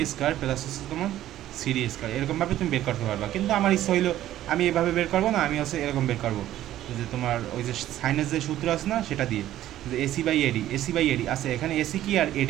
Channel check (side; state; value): left; quieter; 13.2 dB